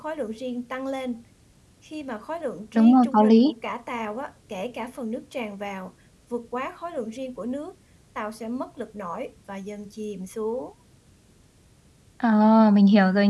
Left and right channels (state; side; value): identical; both; correlation 1.00